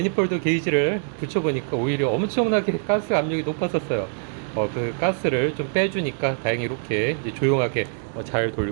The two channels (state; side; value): silent; left; digital silence